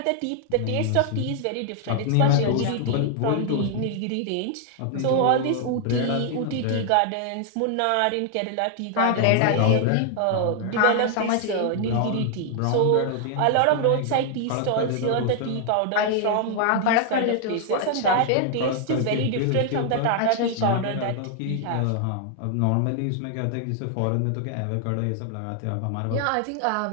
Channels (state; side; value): different; both; correlation 0.00